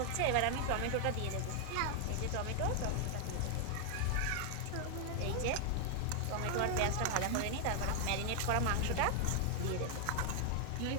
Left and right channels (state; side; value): different; both; correlation 0.00